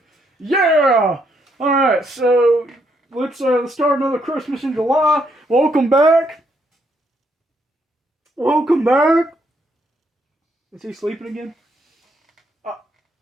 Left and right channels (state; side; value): normal; both; correlation 0.73